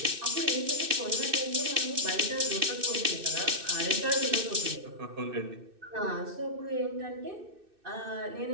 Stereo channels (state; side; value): late; left; 2.6 ms